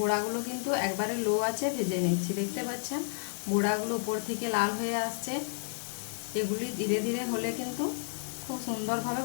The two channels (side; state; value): right; silent; digital silence